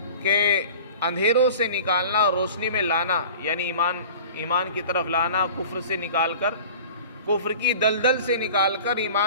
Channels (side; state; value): both; inverted; correlation -0.41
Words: کہ اندھیروں سے نکالنا اور روشنی میں لانا، یعنی ایمان کی طرف لانا، کفر سے نکال کر، کفر کی دلدل سے نکال کر